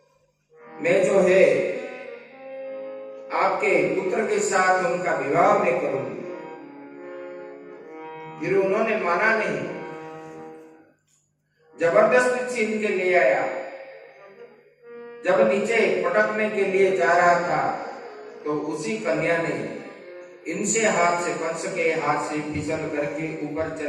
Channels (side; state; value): both; identical; correlation 1.00